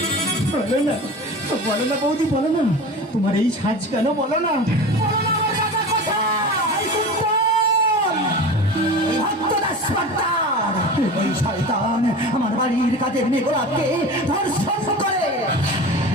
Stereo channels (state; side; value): normal; both; correlation 0.33